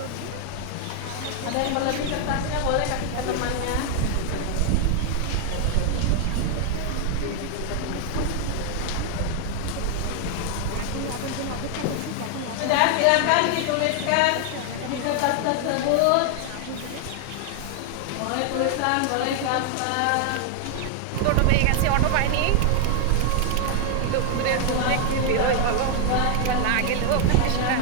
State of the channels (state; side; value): different; both; correlation 0.00